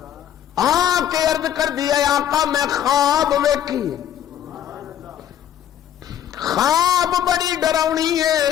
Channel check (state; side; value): quieter; right; 10.5 dB